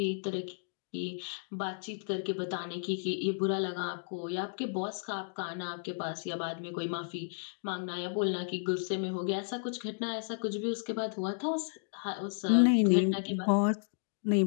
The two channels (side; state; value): right; silent; digital silence